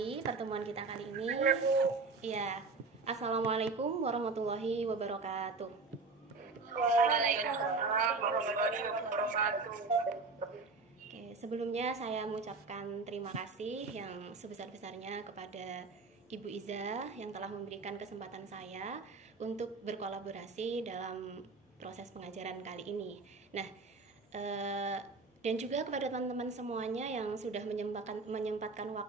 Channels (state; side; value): quieter; left; 4.0 dB